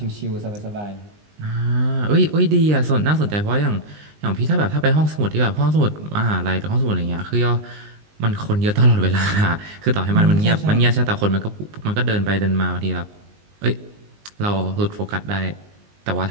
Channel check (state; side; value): late; left; 19 ms